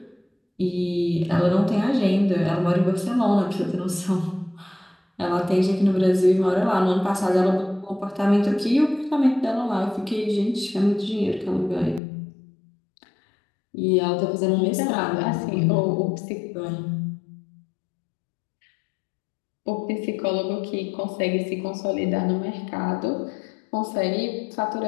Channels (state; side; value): drops out; right; at 12.0 s